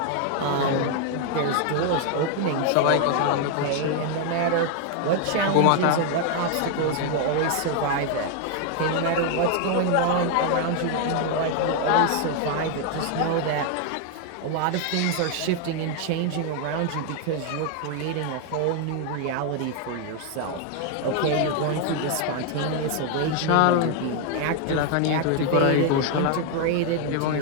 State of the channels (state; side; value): different; both; correlation 0.00